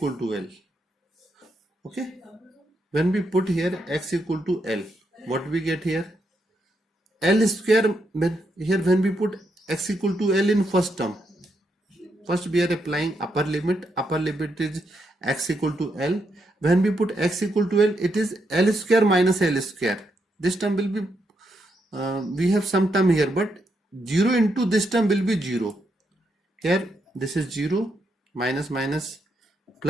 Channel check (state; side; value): normal; both; correlation 0.80